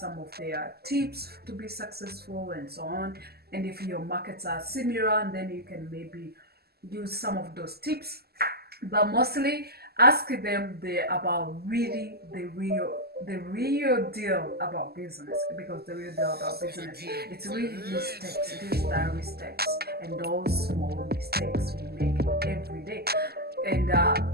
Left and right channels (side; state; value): left; late; 0.46 ms